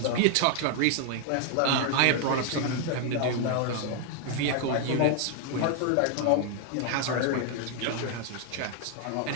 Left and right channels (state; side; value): different; both; correlation 0.00